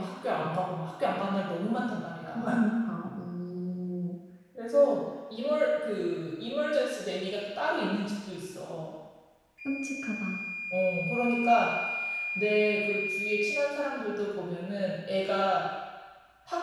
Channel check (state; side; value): identical; both; correlation 1.00